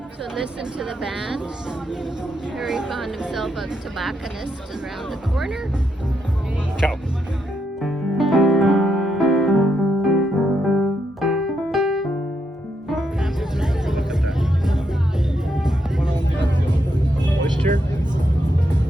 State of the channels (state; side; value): normal; both; correlation 0.80